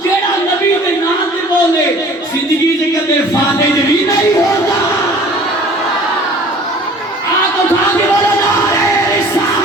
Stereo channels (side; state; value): both; normal; correlation 0.48